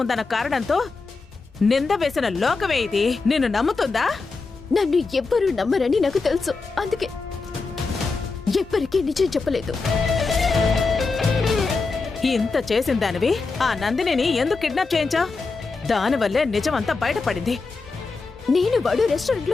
ఉందన్న కారణంతో నింద వేసిన లోకమే ఇది నిన్ను నమ్ముతుందా? నన్ను ఎవ్వరూ నమ్మరని నాకు తెలుసు, అందుకే ఎవ్వరికీ నిజం చెప్పలేదు. ఇంత చేసిన దానివి ఆ నందినిని ఎందుకు కిడ్నాప్ చేయించావు? దానివల్లే నిజమంతా బయటపడింది. నేను వాడు రెస్టారెంట్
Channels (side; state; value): right; quieter; 4.1 dB